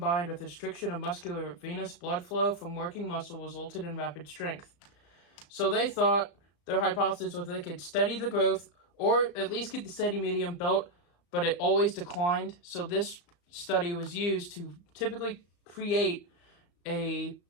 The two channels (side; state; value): right; late; 35 ms